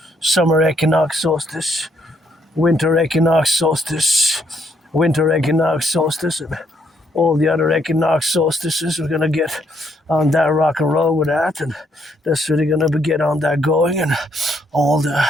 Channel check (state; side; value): normal; both; correlation 0.72